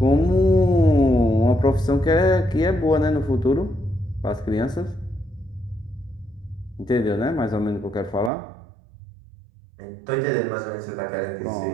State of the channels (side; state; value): left; drops out; at 8.3 s